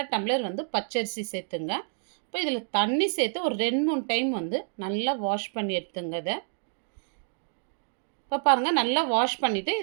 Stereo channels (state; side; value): silent; left; digital silence